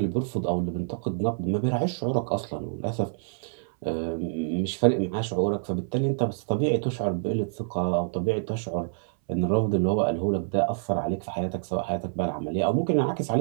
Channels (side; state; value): left; silent; 58 dB below the other